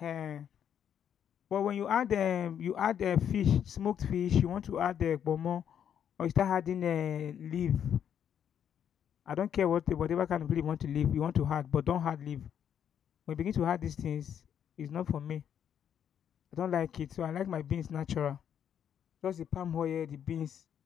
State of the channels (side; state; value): right; quieter; 8.9 dB